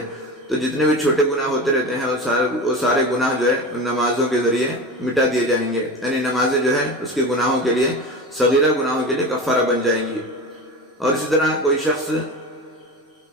تو جتنے بھی چھوٹے گناہ ہوتے رہتے ہیں وہ سارے گناہ جو ہے ان نمازوں کے ذریعے مٹا دیے جائیں گے، یعنی نمازیں جو ہے اس کے گناہوں کے لیے، صغیرہ گناہوں کے لیے کفارہ بن جائیں گی۔ اور اسی طرح کوئی شخص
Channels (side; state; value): both; normal; correlation 0.28